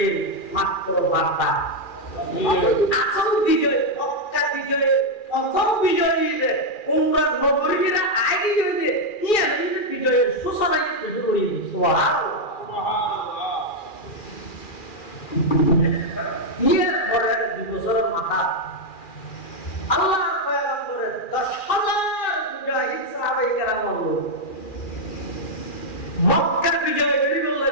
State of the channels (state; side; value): late; right; 2.4 ms